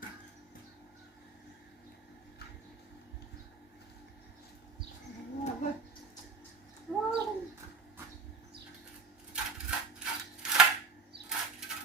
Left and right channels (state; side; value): quieter; left; 4.6 dB